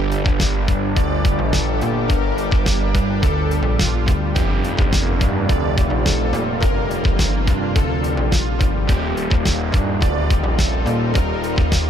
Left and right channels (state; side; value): normal; both; correlation 0.76